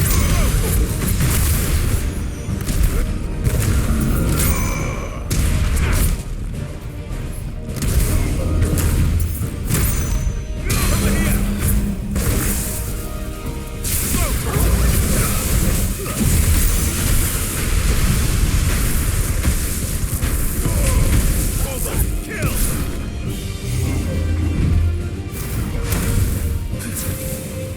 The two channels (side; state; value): both; identical; correlation 1.00